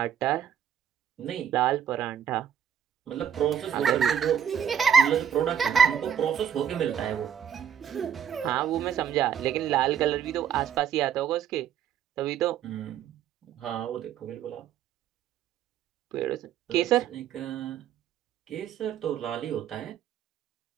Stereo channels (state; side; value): quieter; left; 8.8 dB